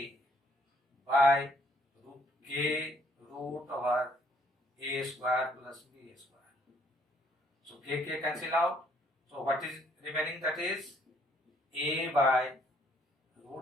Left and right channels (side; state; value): both; normal; correlation 0.66